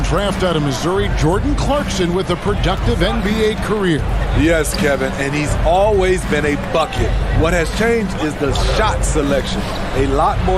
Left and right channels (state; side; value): identical; both; correlation 1.00